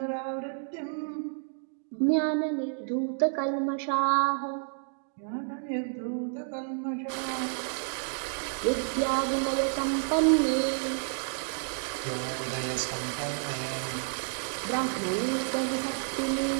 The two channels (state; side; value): silent; left; digital silence